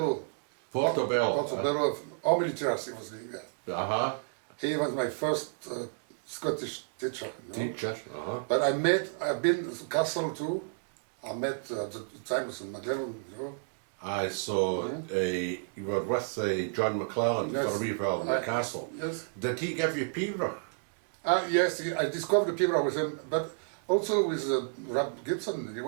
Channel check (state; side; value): silent; left; digital silence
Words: Portobello. All military was living there. Uh-huh. He was my first Scottish teacher. You know? Teacher. Uh-huh. But I've been to Castle too. I met at the time in McLellan, you know. Aye, so you were with John McClellan for a wee while in the castle. Yes. Did he give you Peterborough? Yes, I discovered the Peterborough with him, but also with Rob Gibson